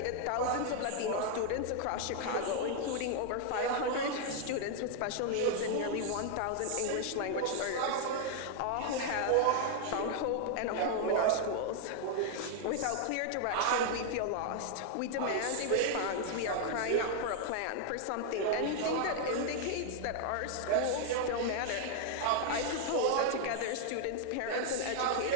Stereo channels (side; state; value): both; different; correlation 0.00